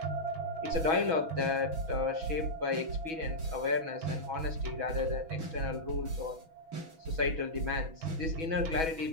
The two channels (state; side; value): late; left; 6.2 ms